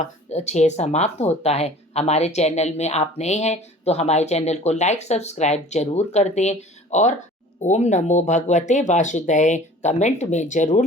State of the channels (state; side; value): normal; both; correlation 0.46